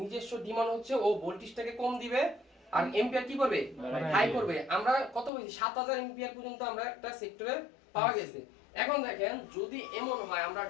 ডিমান্ড হচ্ছে ও ভোল্টেজটাকে কম দিবে আর এম্পিয়ার কি করবে হাই করবে। আমরা কত বলছি 7000 এম্পিয়ার পর্যন্ত আমরা একটা সেক্টরে পাওয়া গেছে। এখন দেখেন যদি এমন হয় আমরা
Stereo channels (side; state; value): right; drops out; at 5.3 s